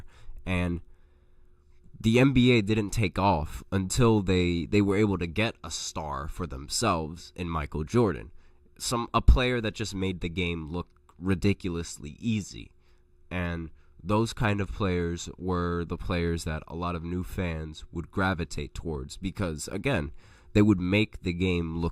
and the NBA didn't take off until they were able to get a star for themselves in Michael Jordan, a player that just made the game look ridiculously easy. And those kind of players were the players that a lot of new fans would gravitate towards because, again, they would make the game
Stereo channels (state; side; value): identical; both; correlation 1.00